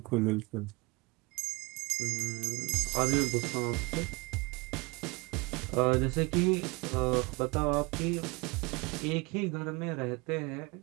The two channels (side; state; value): left; quieter; 26.4 dB